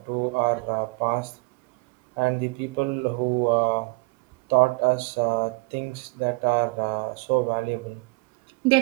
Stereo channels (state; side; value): quieter; left; 28.1 dB